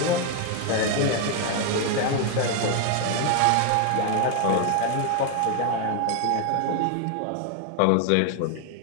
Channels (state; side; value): different; both; correlation 0.01